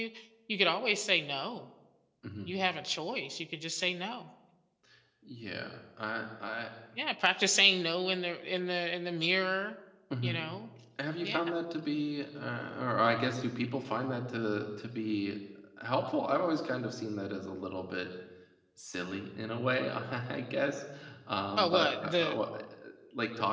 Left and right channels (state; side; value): identical; both; correlation 1.00